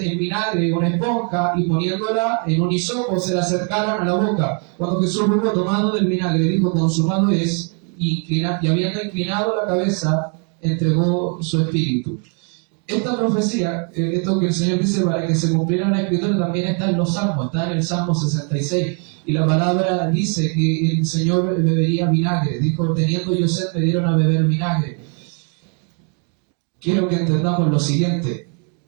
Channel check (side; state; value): left; quieter; 39.7 dB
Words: vinagre una esponja y poniéndola en un hisopo se la acercaron a la boca. Cuando Jesús hubo tomado del vinagre, dijo: consumado es, y habiendo inclinado la cabeza, entregó su espíritu. Esta profecía, esto que el Señor dice para que se cumpliera la escritura, también está en los Salmos, está en el Salmo 66. Y la palabra dice que el Señor bebería vinagre. Dijo: teniendo yo sed, me dieron a beber vinagre. Quiero que entendamos lo siguiente.